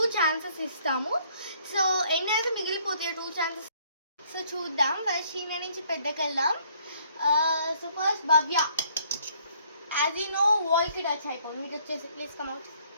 ఛాన్సెస్ ఇస్తాము. సో ఎన్ని అయితే మిగిలిపోతాయి 2 ఛాన్సెస్. సో చూద్దాం. ఫస్ట్ చిన్న నుంచి పెద్దకి వెళ్దాం. So first Bhavya, as you know, wall ki touch అయిపోయింది. మీకు వచ్చేసి ప్లీజ్ కమ్ అవుట్.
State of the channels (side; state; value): both; inverted; correlation -0.63